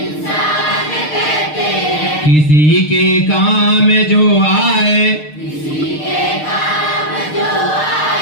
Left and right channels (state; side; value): late; right; 6.6 ms